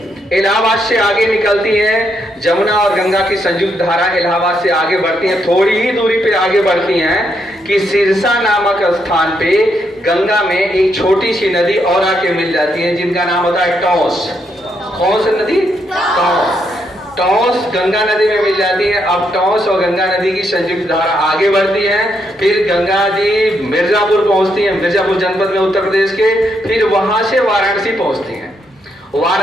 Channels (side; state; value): both; normal; correlation 0.78